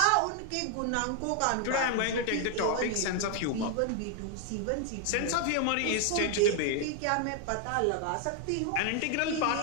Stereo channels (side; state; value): both; different; correlation 0.00